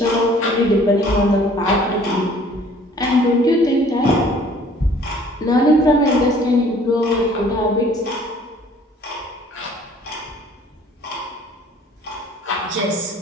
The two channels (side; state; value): both; normal; correlation 0.54